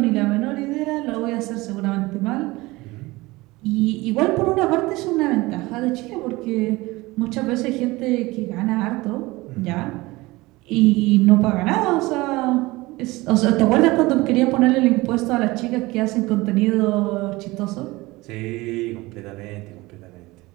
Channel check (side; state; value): left; quieter; 21.0 dB